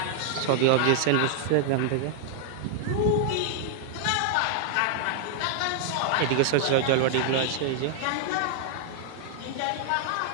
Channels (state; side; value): different; both; correlation -0.01